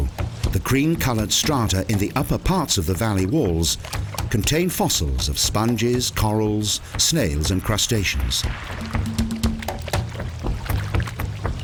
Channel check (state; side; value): identical; both; correlation 1.00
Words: The cream-coloured strata in the upper parts of the valley walls contain fossils of sponges, corals, snails and crustaceans.